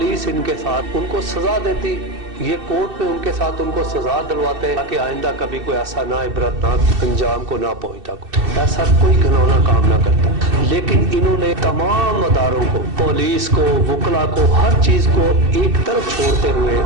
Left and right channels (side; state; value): left; late; 2.6 ms